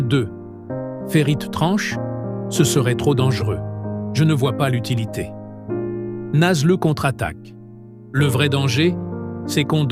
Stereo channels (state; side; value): identical; both; correlation 1.00